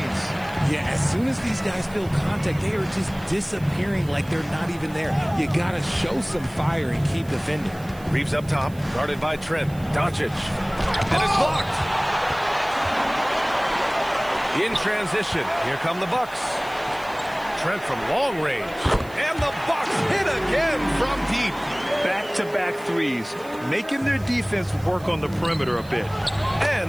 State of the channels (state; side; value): noise; right; hiss, 23 dB below the sound